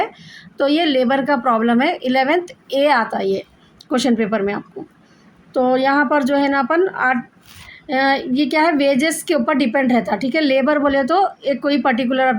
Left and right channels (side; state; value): both; identical; correlation 1.00